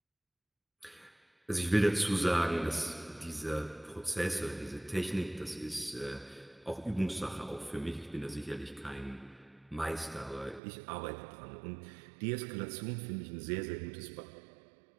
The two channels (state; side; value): drops out; left; at 10.6 s